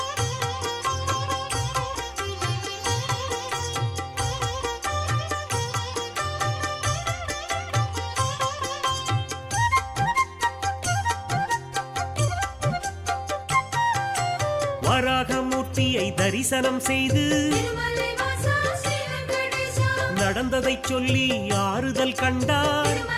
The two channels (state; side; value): identical; both; correlation 1.00